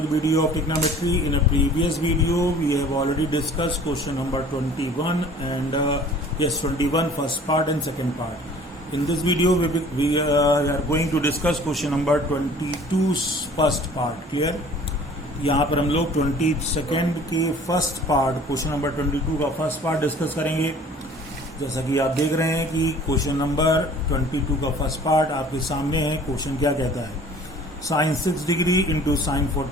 video of trigonometry. In a previous video, we have already discussed question number 21 and 21 first part and second part. In this video, we are going to discuss question number 22 first part. Clear? यहाँ पर हम लोग 22nd के first part question number 22 का first part discuss करेंगे। जैसा कि आप देख रहे हैं कि क्वेश्चन नंबर 22 का फर्स्ट पार्ट आपके सामने है। क्वेश्चन क्या कहता है? Sine 6 degree into sine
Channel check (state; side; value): normal; both; correlation 0.49